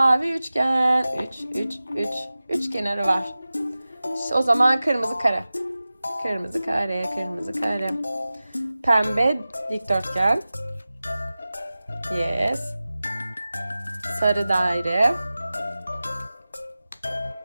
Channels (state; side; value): inverted; both; correlation -0.96